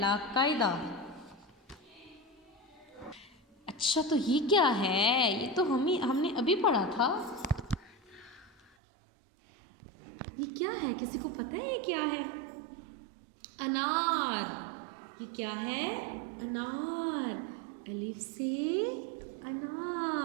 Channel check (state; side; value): drops out; left; at 8.7 s